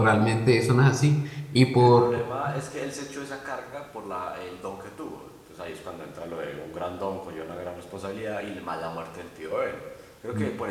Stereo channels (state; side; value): identical; both; correlation 1.00